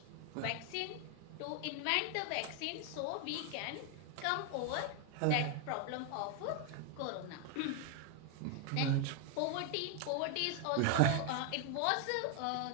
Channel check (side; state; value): both; different; correlation 0.01